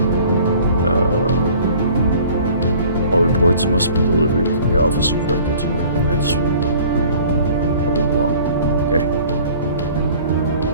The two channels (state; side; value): inverted; both; correlation -0.50